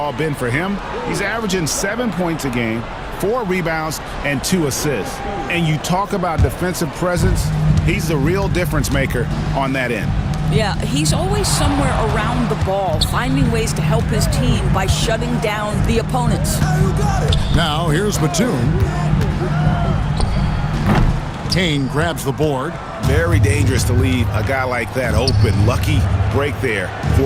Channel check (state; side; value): identical; both; correlation 1.00